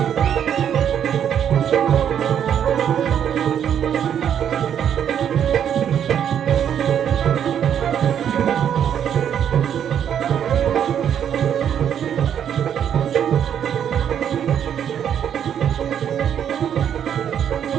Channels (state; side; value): quieter; left; 9.1 dB